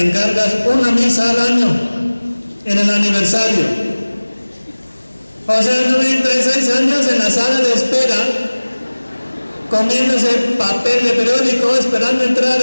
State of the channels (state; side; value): inverted; both; correlation -1.00